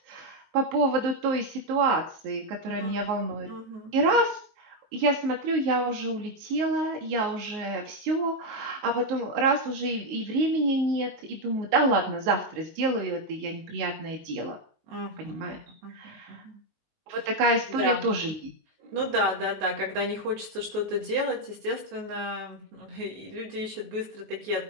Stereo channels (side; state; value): left; late; 19 ms